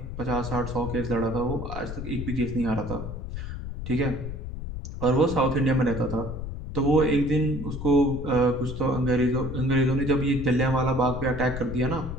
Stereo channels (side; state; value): left; noise; rumble, 7 dB below the sound